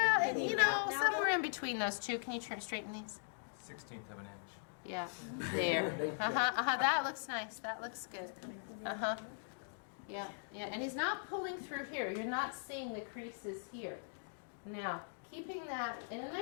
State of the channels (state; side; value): silent; right; digital silence